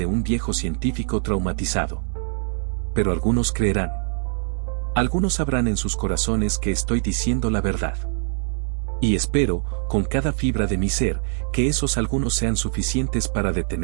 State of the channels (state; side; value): silent; left; 63 dB below the other